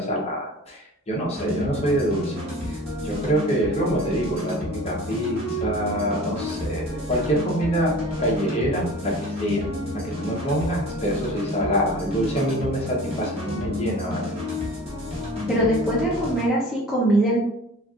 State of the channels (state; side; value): normal; both; correlation 0.41